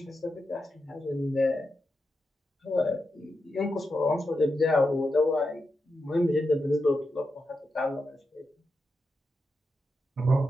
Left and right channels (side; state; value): both; normal; correlation 0.87